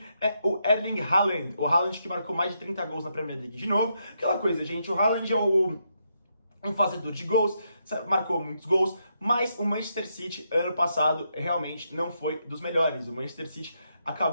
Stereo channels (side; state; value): both; inverted; correlation -0.80